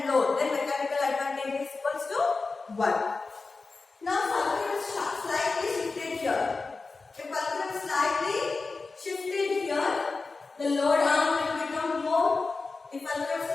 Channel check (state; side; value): quieter; right; 4.0 dB